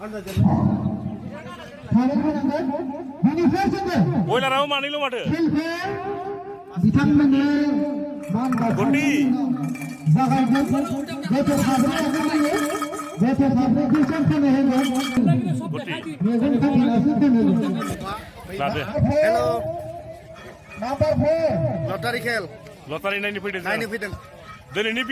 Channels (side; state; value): both; identical; correlation 1.00